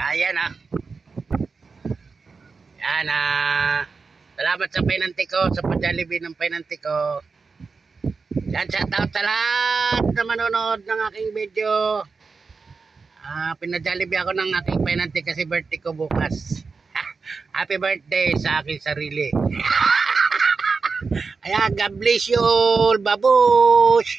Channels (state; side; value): quieter; left; 4.7 dB